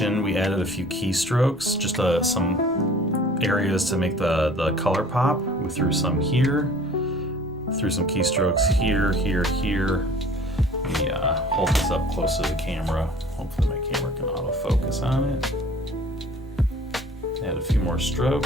we added a few keystrokes, just some areas to make the color pop. We threw some here, threw some keystrokes here, here, here. Let me hold this up close to the camera. Hopefully my camera can autofocus on it. Add a few more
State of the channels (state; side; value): normal; both; correlation 0.49